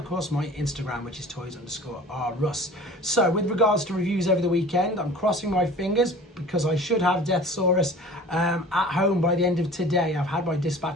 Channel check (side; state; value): both; normal; correlation 0.43